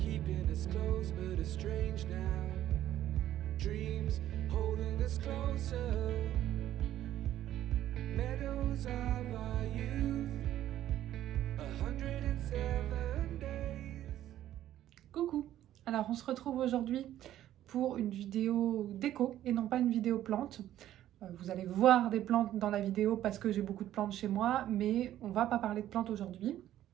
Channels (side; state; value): left; quieter; 12.6 dB